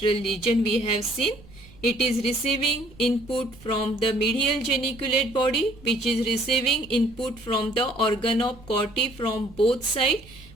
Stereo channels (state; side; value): noise; right; rumble, 22 dB below the sound